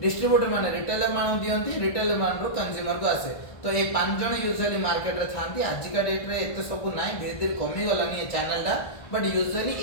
डिस्ट्रीब्यूटर माने रिटेलर मान दियंती रिटेलर मान कंज्यूमर को आसे तो ये 5 जन यूजुअली मार्केट रे थांती आजिका डेट रे एते सब नाइ धीरे धीरे कमी गलानी ये चैनल दा but usually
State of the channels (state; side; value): late; right; 1.5 ms